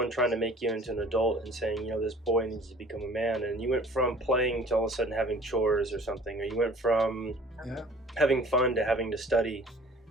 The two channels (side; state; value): both; normal; correlation 0.49